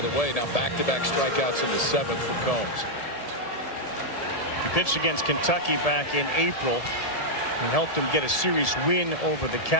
way. Now back-to-back strikeouts in the 7th for Combs. He pitched against Kentucky back in April. He helped him get a series win over the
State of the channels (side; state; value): right; late; 1.7 ms